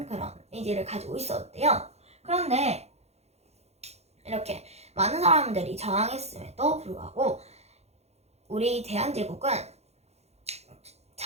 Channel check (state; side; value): late; left; 0.31 ms